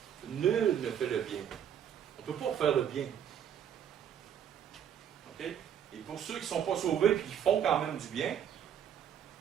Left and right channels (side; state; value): left; quieter; 9.1 dB